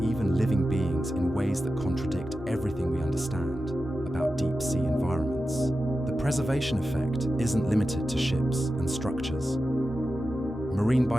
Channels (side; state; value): both; normal; correlation 0.92